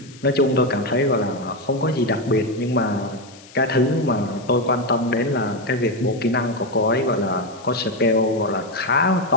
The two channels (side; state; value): left; noise; hiss, 22 dB below the sound